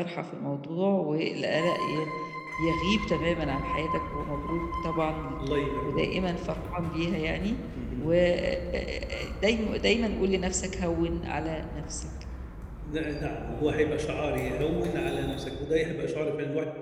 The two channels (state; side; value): identical; both; correlation 1.00